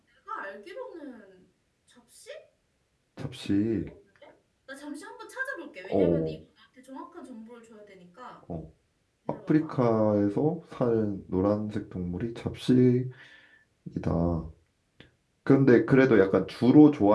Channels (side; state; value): both; identical; correlation 1.00